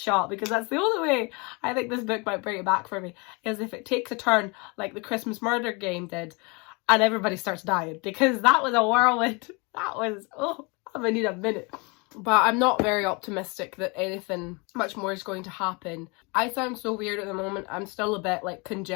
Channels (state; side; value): quieter; right; 29.5 dB